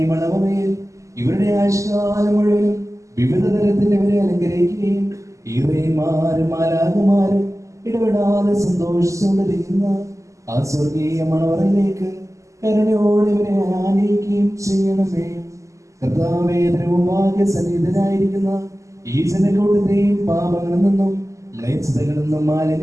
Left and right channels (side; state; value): left; late; 0.15 ms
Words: മണവമേൽ ഇവരുടെ ആയുഷ്കാലം മുഴുവനും വിവിധ തരത്തിൽ ഇവരെ അലങ്കരിക്കുകയും ഈറേമാരും മാലാഖമാരും ഇടപെടാതെ സന്തോഷിച്ചുകൊണ്ടിരിക്കുന്ന ആ സ്വർഗീയ മണവറയിലേക്ക് കരുണയോടെ ഇവരെ ആനയിക്കുകയും ചെയ്യണമേ. കർത്താവേ, ദ്രവഭാഗ്യ സന്നിഹിതനായിരിക്കുന്ന ഈ ജനക്കൂട്ടത്തെയും പാപങ്ങളിൽ നിന്നും മ്ലേച്ഛതകളിൽ നിന്നും